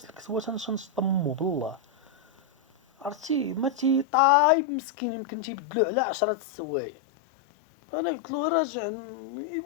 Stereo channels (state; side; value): drops out; right; at 4.0 s